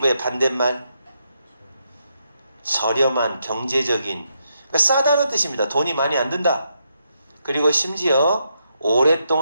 반대말 저렴한 경제적인 그러니까 싸다는 뜻입니다. 돈이 많이 안 든다. 그리고 심지어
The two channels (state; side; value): inverted; both; correlation -0.80